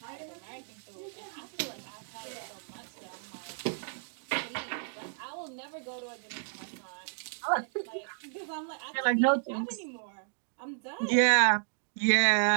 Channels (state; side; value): silent; left; digital silence